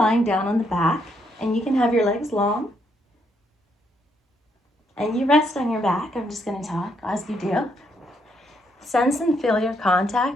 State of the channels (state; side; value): normal; both; correlation 0.75